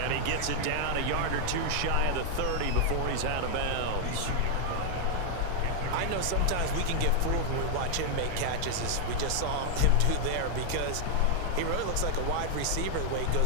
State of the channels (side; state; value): both; different; correlation 0.00